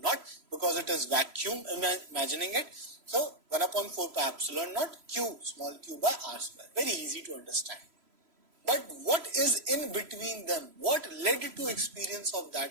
naught, because it is vacuum, imagining it. So 1 upon 4 pi epsilon naught Q small q by R square. Very easy to understand. But what is in between them? What led to experience of that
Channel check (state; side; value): late; left; 3.0 ms